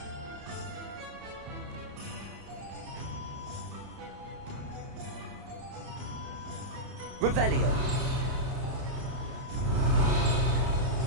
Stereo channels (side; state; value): left; late; 31 ms